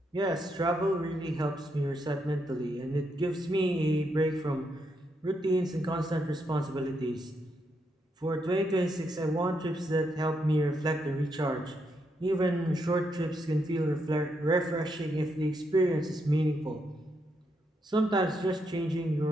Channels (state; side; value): normal; both; correlation 0.79